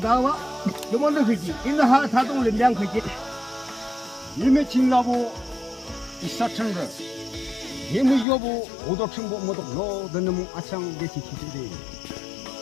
요거는 그지. 인하 사동을 량 그지. 이미 진라고 이사천거 예무 여부 오덕천보 모덕 너드는 아창 게시 기준대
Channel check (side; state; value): right; drops out; at 8.2 s